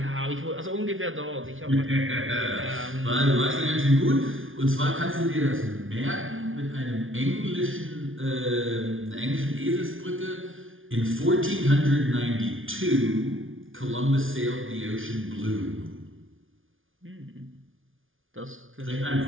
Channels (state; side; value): late; left; 0.58 ms